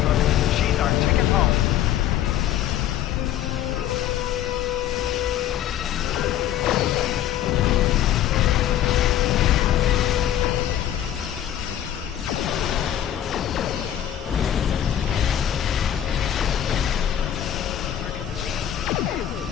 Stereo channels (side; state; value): right; quieter; 11.2 dB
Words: She's our ticket home.